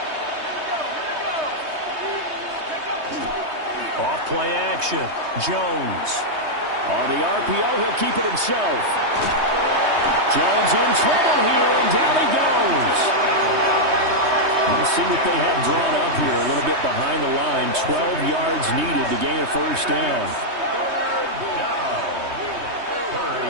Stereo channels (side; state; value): left; late; 3.2 ms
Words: Off play action. Jones. On the RPO, he'll keep it himself. Jones in trouble here, and down he goes. Let's see what they have drawn up here. A little bit behind the line. 12 yards needed to gain a first down.